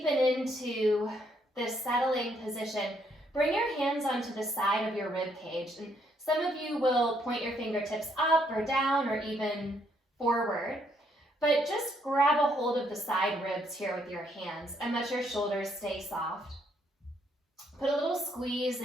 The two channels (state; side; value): normal; both; correlation 0.71